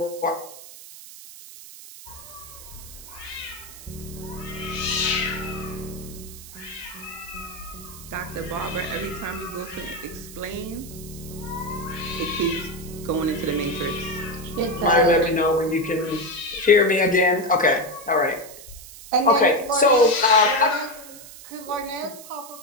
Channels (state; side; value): noise; right; hiss, 16 dB below the sound